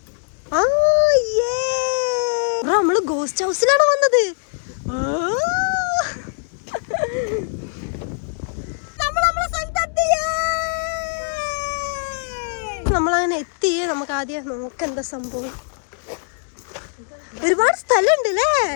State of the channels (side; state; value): right; silent; digital silence